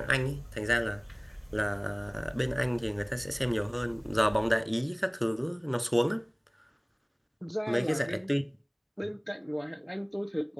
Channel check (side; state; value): both; identical; correlation 1.00